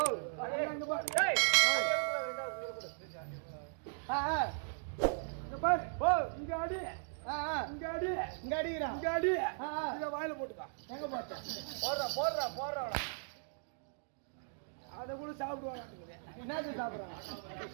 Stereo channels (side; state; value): left; silent; digital silence